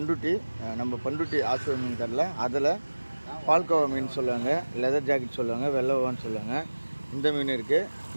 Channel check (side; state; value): both; inverted; correlation -1.00